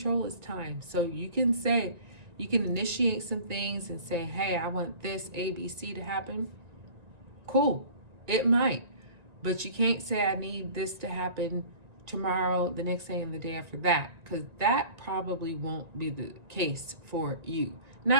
is time. So you can say, you can initiate some things and say, hey, I want this ABC to happen. Cool. It might. But you can't say, I need this to happen tomorrow, the next day, and the day after that, because that probably won't be the case for you.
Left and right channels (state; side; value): late; left; 1.9 ms